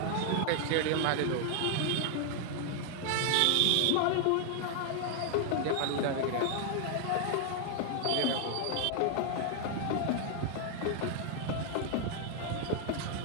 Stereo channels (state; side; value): different; both; correlation 0.00